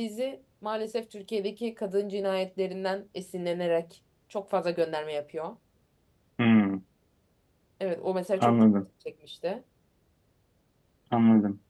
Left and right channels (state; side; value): identical; both; correlation 1.00